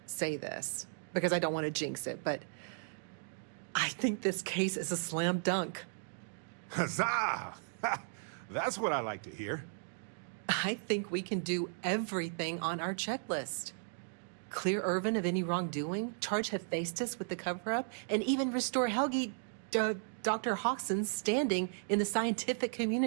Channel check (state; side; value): silent; left; digital silence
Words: say this, because I don't want to jinx it, but I think this case is a slam dunk. Huzzah! That's what I like to hear. I think we can do everything on our checklist. Clear Irvin of any wrongdoing, charge Hephaestus with the cover-up, and even restore Helgi, Dr. Hawkson's standing in the scientific